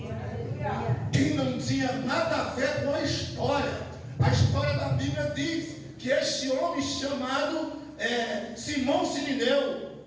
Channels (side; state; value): both; identical; correlation 1.00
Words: Quem não tinha nada a ver com a história da Bíblia diz que este homem chamado Simão Sirineu,